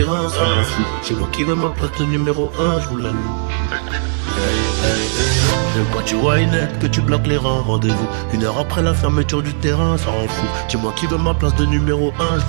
ça m'en fout. C'est moi qui veux ma place de numéro 1, je vous la loue. Quand tu vois une lettre, que tu bloques les reins. Rendez-vous 1 heure après la fermeture du terrain, ça rend fou. C'est moi qui veux ma place de numéro 1, je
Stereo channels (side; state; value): left; silent; digital silence